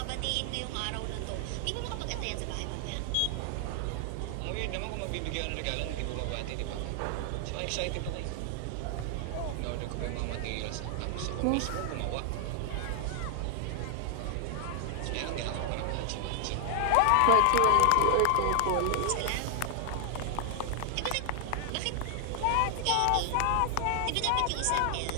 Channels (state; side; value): different; both; correlation 0.00